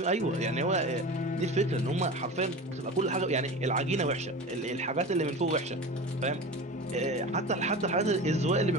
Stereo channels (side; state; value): both; normal; correlation 0.32